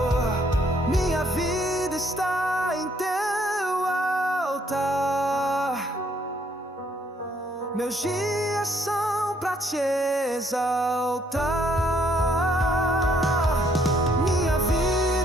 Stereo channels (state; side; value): normal; both; correlation 0.67